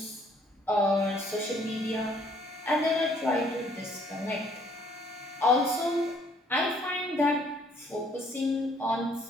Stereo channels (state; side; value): normal; both; correlation 0.63